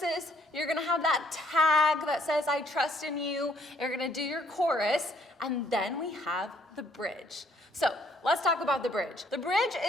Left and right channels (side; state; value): both; normal; correlation 0.65